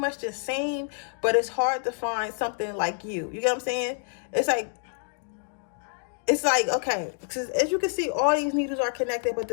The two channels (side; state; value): right; silent; 60 dB below the other